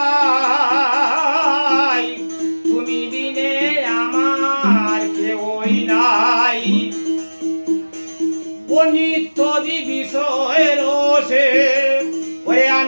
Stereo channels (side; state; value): both; inverted; correlation -1.00